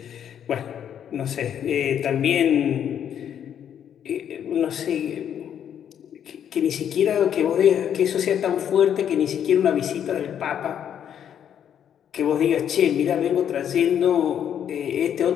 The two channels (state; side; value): quieter; right; 9.2 dB